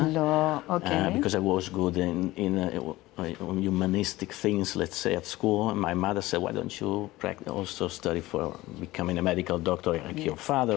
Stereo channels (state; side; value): quieter; right; 18.3 dB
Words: okay. Because I was good in humanistic things, let's say, at school. And my mother said, why don't you also study for becoming a medical doctor like your